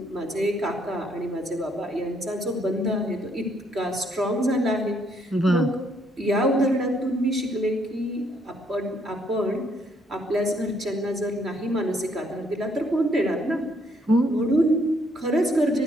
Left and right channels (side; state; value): both; normal; correlation 0.69